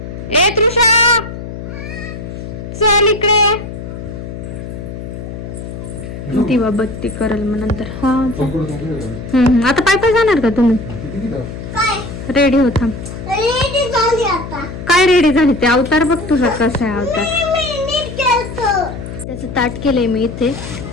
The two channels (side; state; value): left; noise; hum, 9 dB below the sound